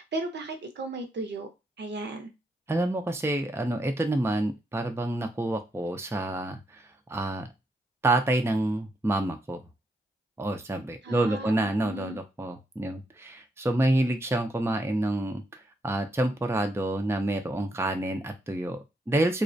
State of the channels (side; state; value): both; normal; correlation 0.79